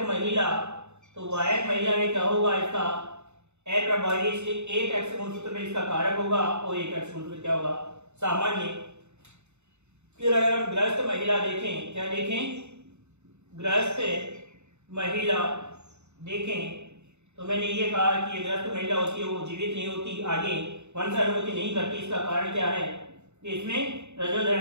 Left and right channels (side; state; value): left; late; 0.82 ms